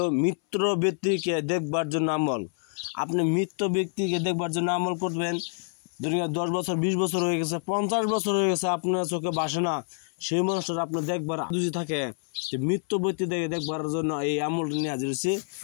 মৃত ব্যক্তিকে দেখবার জন্য আমল। আপনি মৃত ব্যক্তিকে দেখবার জন্য আমল করবেন। দুনিয়া 10 বছর 20 বছর হয়ে গেছে, 50 বছর হয়ে গেছে, আপনার চোখে ভাসে না, সেই মানুষটা আপনার দেখবার যদি থাকে, মৃত ব্যক্তি দেখবার জন্য এই আমলটা নিয়ে হাজির হয়েছি।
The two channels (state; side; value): silent; right; 60 dB below the other